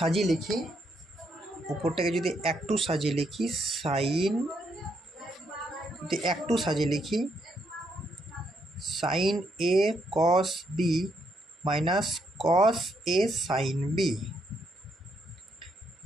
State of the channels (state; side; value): normal; both; correlation 0.76